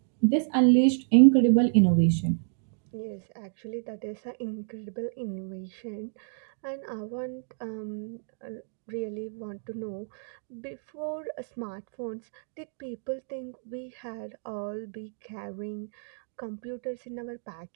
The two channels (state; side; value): silent; left; digital silence